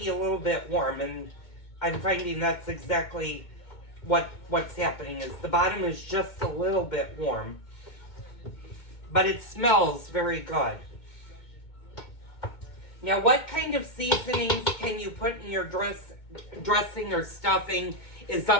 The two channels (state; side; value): late; right; 2.2 ms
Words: a little bit warm, and I'm finding that's exactly what's happening, is the bottom is just a little bit warm. But it smells very good. Now, what kind of seasonings can you put in your dressing or stuffing is